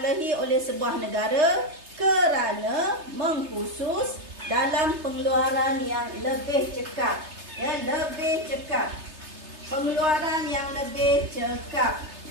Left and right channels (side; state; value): left; late; 3.3 ms